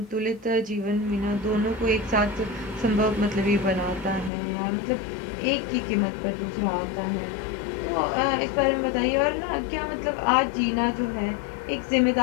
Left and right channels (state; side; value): drops out; right; at 4.3 s